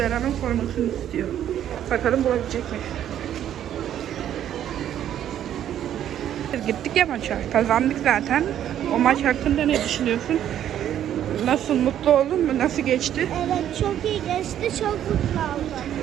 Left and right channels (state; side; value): quieter; left; 10.7 dB